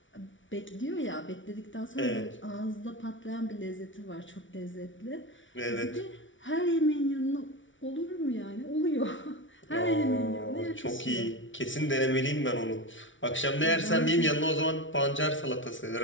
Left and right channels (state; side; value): late; right; 0.56 ms